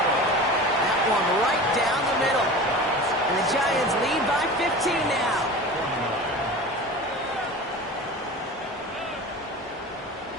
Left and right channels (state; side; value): normal; both; correlation 0.34